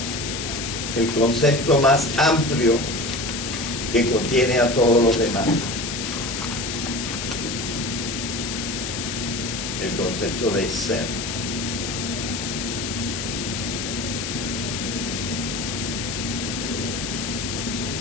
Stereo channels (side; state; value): left; noise; hiss, 4 dB below the sound